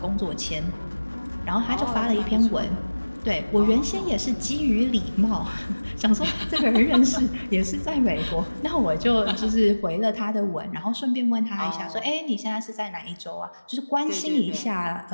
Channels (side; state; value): both; inverted; correlation -1.00